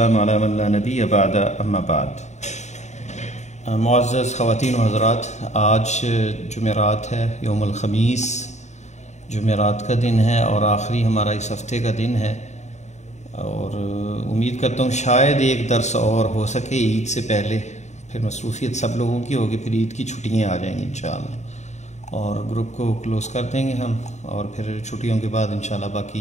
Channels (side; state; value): right; late; 0.34 ms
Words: علی من لا نبی بعد اما بعد۔ معزز خواتین و حضرات، آج جمعرات ہے، یوم الخمیس جمعرات کا دن ہے اور آخری ہمارا اس ہفتے کا دن ہے، اور امید کرتا ہوں شاید ایک درس اور ہو سکے عید سے پہلے، پھر مصروفیت سب لوگوں کی ہوگی، پھر عید کی چھٹیاں آ جائیں گی انشاءاللہ، اور گروپ کو کلوز کر دیں گے ہم، اور پھر چھٹیوں کے بعد انشاءاللہ